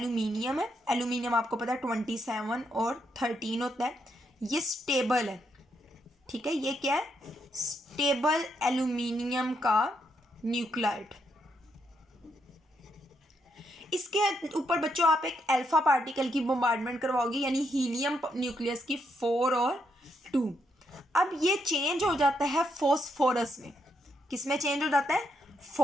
है। एल्यूमिनियम आपको पता है 27 और 13 होता है, ये स्टेबल है। ठीक है, ये क्या है, स्टेबल एल्यूमिनियम का न्यूक्लाइड। इसके ऊपर बच्चों आप एक अल्फा पार्टिकल की बम्बार्डमेंट करवाओगे, यानी हीलियम न्यूक्लियस की 4 और 2। अब ये चेंज हो जाता है फॉस्फोरस में। किस में चेंज हो जाता है,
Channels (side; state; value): both; normal; correlation 0.78